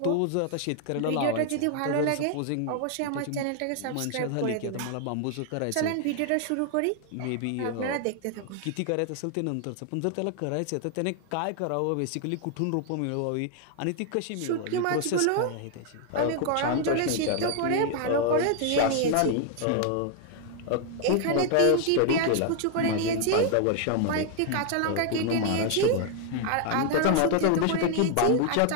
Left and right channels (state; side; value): different; both; correlation 0.00